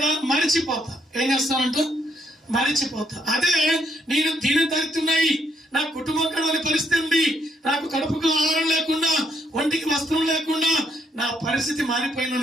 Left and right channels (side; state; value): both; normal; correlation 0.73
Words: మరిచిపోతా. ఏం చేస్తానంట? మరిచిపోతా. అదే నేను దీని దరిద్రున్నాయి, నా కుటుంబం కడవని పరిస్థితి ఉంది, నాకు కడుపుకు ఆహారం లేకుండా, ఒంటికి వస్త్రం లేకుండా నా పరిస్థితి